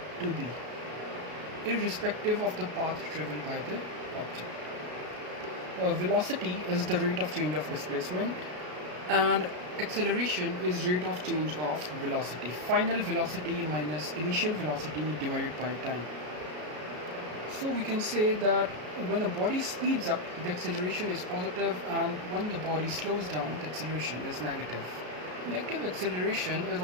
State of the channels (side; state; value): left; late; 33 ms